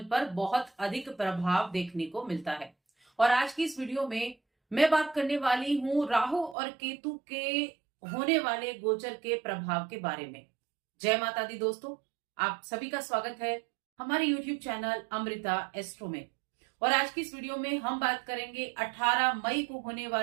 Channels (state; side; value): drops out; left; at 6.6 s